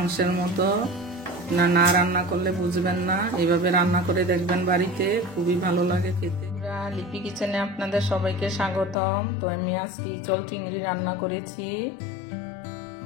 মতো। না রান্না করলে বুঝবেন না, এইভাবে রান্না করে দেখবেন বাড়িতে, খুবই ভালো লাগে খেতে। লিপি কিচেনে আপনাদের সবাইকে স্বাগতম। তো আমি আজকে ইচল চিংড়ি রান্না করেছি,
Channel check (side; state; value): right; drops out; at 9.0 s